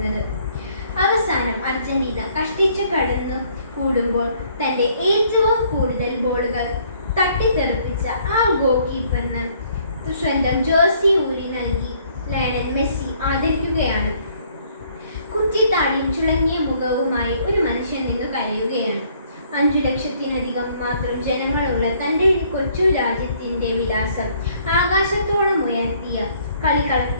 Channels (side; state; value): both; inverted; correlation -0.63